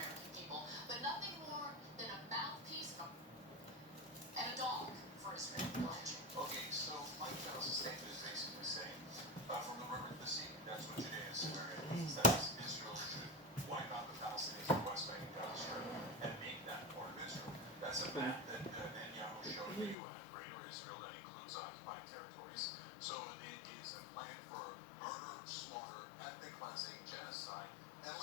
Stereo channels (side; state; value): right; drops out; at 20.0 s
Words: people, but nothing more than a mouthpiece and a dog for Israel. Okay, so Mike Pence's statement is basically saying, from the river to the sea, that's what Judea and Samaria means. That is, Israel should wipe out the Palestinians in the West Bank and Gaza Strip and make that part of Israel. That's a map that Netanyahu showed the UN, Greater Israel, that includes occupied territories. So it is a plan for murder, slaughter, ethnic cleansing, genocide, and